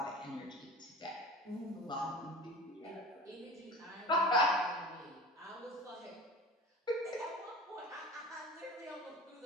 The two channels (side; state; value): both; normal; correlation 0.37